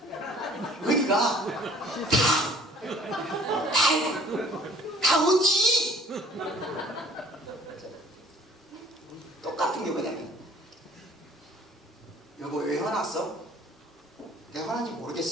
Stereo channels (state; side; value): normal; both; correlation 0.53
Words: 다 어디? 똑같은 게 뭐냐면 여보 왜 화났어? 내가 화난지